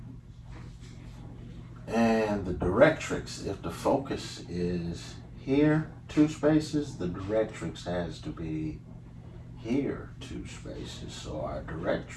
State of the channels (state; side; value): identical; both; correlation 1.00